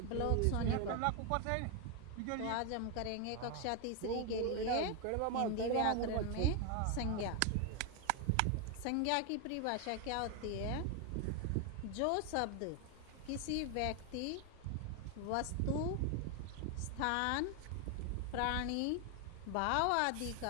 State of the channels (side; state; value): both; different; correlation 0.01